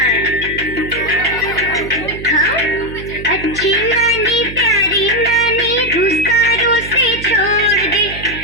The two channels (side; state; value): right; noise; hum, 12 dB below the sound